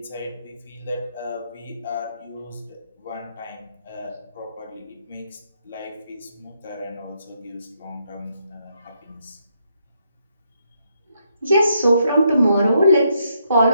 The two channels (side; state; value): both; inverted; correlation -0.76